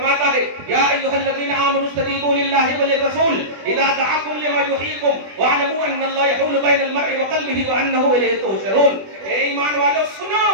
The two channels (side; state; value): left; late; 20 ms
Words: ہے، یا ایھا الذین آمنوا استجیبوا للہ وللرسول اذا دعاکم لما یحییکم واعلموا ان اللہ یحول بین المرء وقلبہ وانہ الیہ تحشرون. اے ایمان والو